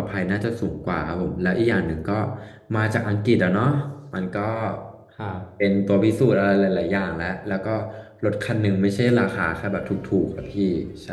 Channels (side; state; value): both; identical; correlation 1.00